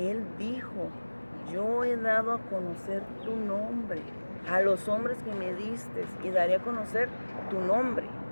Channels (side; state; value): both; inverted; correlation -1.00